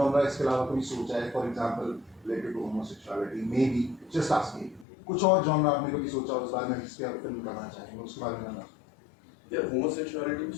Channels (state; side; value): drops out; right; at 4.9 s